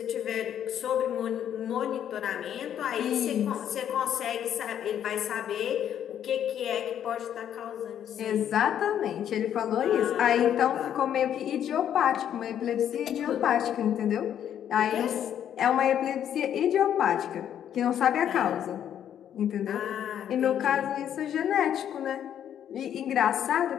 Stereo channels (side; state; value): right; quieter; 9.9 dB